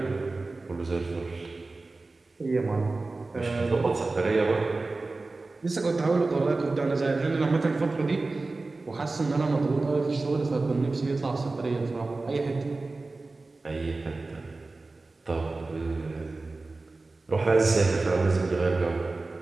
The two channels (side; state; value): left; quieter; 3.4 dB